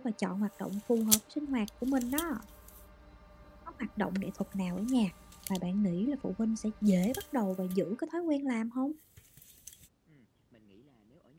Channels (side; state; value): both; identical; correlation 1.00